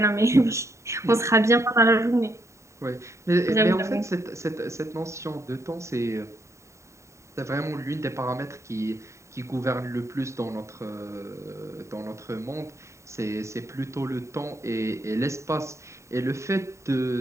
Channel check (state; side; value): late; left; 0.14 ms